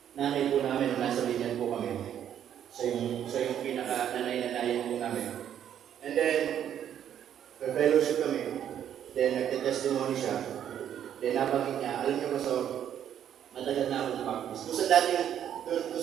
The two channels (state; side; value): quieter; left; 9.8 dB